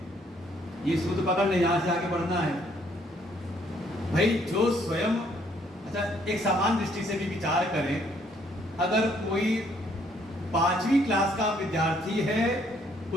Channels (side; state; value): both; normal; correlation 0.66